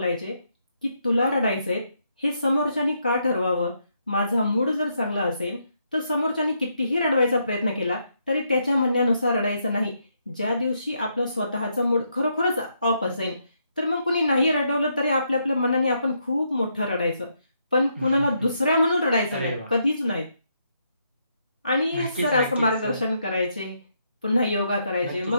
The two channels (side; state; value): both; inverted; correlation -0.77